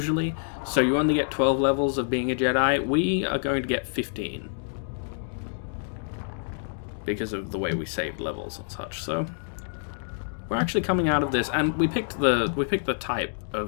so you only get 12 levels of being a Jedi. We are going to get 15 because of the way we saved levels and such. So we're actually coming out of this, and we picked the type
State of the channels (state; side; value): silent; right; digital silence